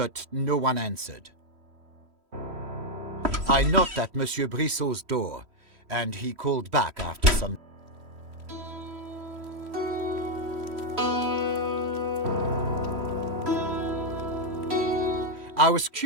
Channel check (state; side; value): late; left; 3.1 ms